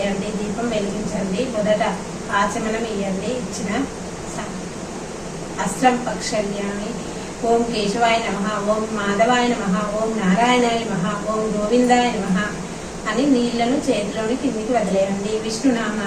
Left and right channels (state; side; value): identical; both; correlation 1.00